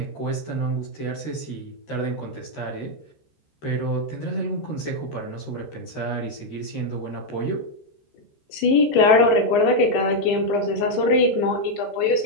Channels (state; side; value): late; right; 13 ms